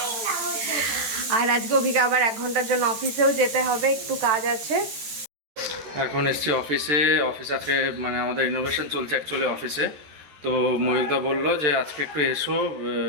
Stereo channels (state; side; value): late; left; 13 ms